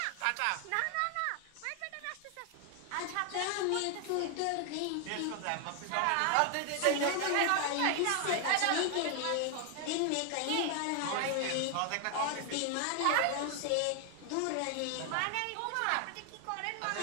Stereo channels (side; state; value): both; different; correlation 0.00